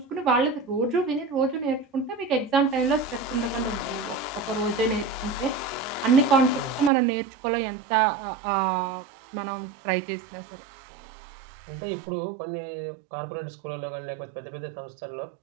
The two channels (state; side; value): drops out; left; at 6.9 s